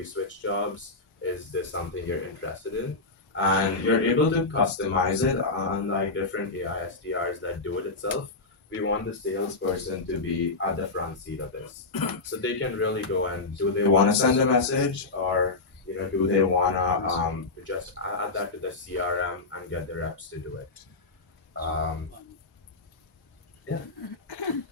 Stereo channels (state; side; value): quieter; right; 3.5 dB